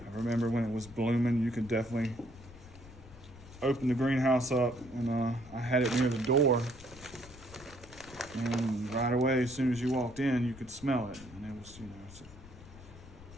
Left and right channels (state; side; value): noise; left; rumble, 18 dB below the sound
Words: remember when it was blooming, you could definitely open the greenhouse up, and I had it near the door, and right away, as soon as you walked in, you could smell it, and it was, you know, it's